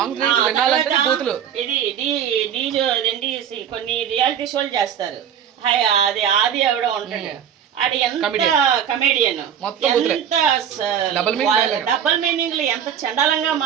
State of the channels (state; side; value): quieter; left; 8.9 dB